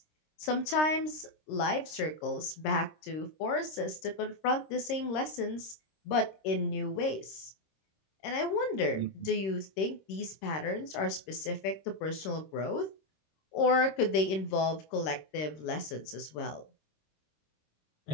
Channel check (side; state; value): right; late; 26 ms